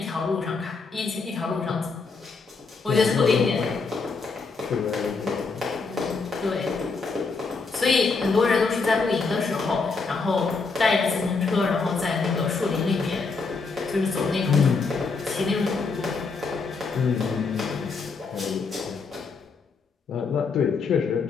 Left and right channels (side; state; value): right; quieter; 4.4 dB